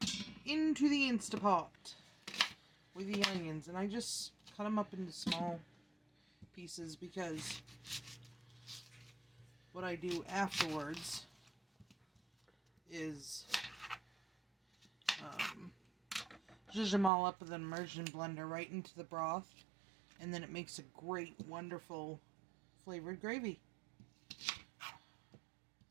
Into the Instapot with the onions, and I just cut them up into small pieces because what I do afterwards is zhuzh them all up with an immersion blender right into the broth, and then it makes a great, wonderful flavored gravy.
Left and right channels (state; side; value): drops out; left; at 17.1 s